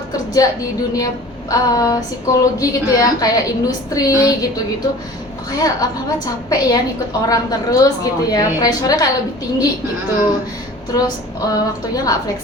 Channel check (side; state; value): both; normal; correlation 0.43